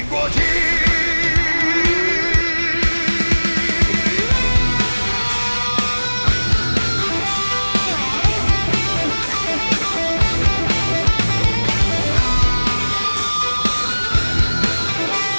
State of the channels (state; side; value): inverted; both; correlation -1.00